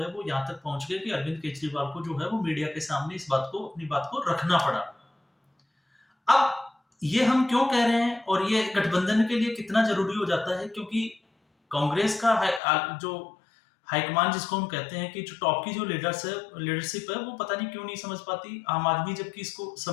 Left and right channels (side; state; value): right; drops out; at 12.6 s